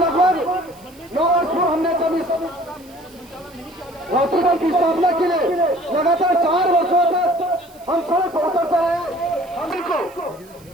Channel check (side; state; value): right; noise; hiss, 26 dB below the sound